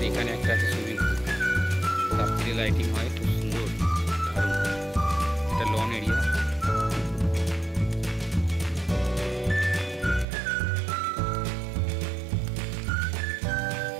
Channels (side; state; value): left; drops out; at 10.2 s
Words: এখানে একটা আছে সুইমিং পুল, রাত্রে লাইটিং হয়, খুব সুন্দর, দারুণ। একটা লন এরিয়া।